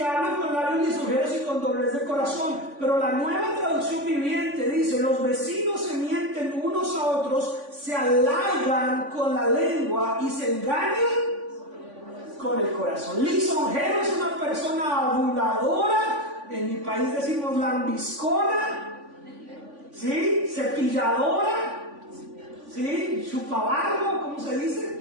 hablan con labios lisonjeros y con doblez de corazón. Pero la Nueva Traducción Viviente dice, los vecinos se mienten unos a otros, se halagan con la lengua y se engañan con el corazón. Lisonjero es una persona aduladora. En mi país decimos lambiscona, ¿sí? Cepilladora, ¿sí? Chupabarro, ¿cómo se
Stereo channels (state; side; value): late; left; 3.5 ms